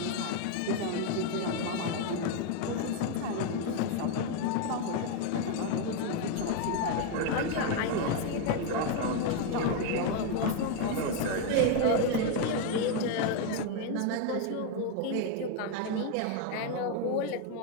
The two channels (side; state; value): both; different; correlation 0.01